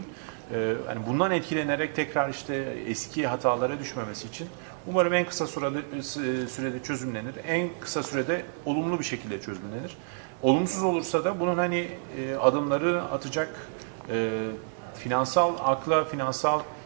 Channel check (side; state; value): left; silent; digital silence